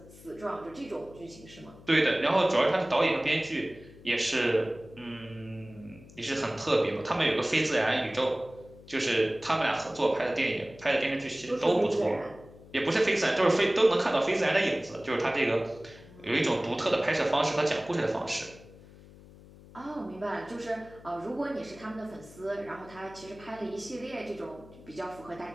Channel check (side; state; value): left; noise; hum, 21 dB below the sound